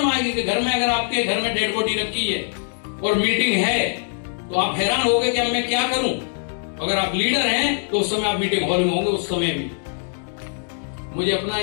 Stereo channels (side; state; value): right; silent; digital silence